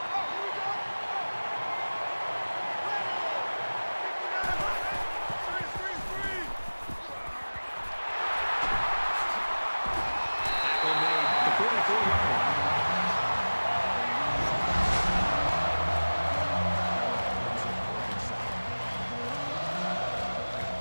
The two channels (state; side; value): inverted; both; correlation -1.00